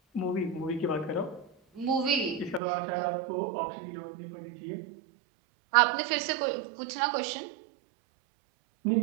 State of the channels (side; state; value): left; drops out; at 2.6 s